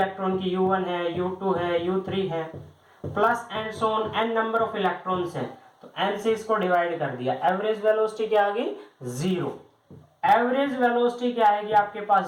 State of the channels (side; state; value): both; identical; correlation 1.00